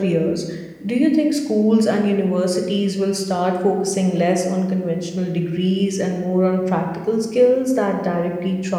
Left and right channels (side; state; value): both; identical; correlation 1.00